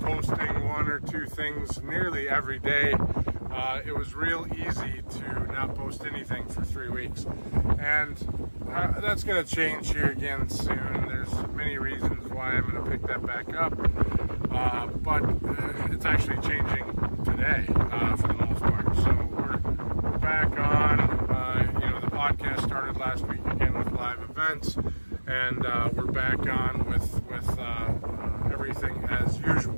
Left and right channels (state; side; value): inverted; both; correlation -1.00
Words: 1 or 2 things nearly every day, it was real easy to not post anything for 3 weeks. And that's going to change here again soon. There's many reasons why I'm going to pick that back up. But it's actually changing today for the most part. So we're back on. The podcast started last week again with live events. And we're back on with everything as